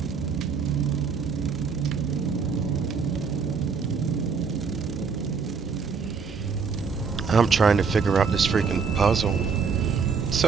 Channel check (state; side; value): quieter; left; 5.6 dB